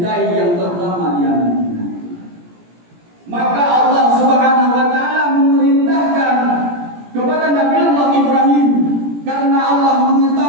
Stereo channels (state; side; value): late; left; 17 ms